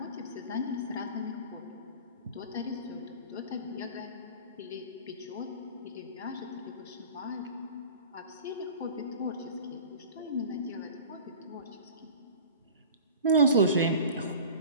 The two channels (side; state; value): both; inverted; correlation -0.39